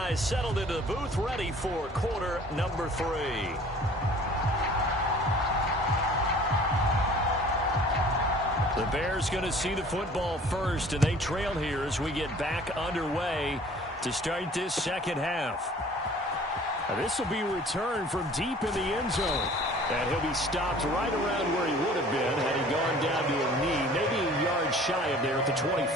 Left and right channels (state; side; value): normal; both; correlation 0.50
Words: settled into the booth, ready for quarter number 3. The Bears going to see the football first, and they trail here as we get back underway to start this second half. Now this will be returned from deep in the end zone. And he'll be stopped right around where he would have been had he gone down to a knee, maybe a yard shy of there at the